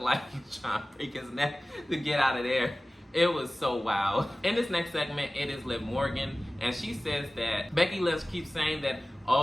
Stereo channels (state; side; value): normal; both; correlation 0.97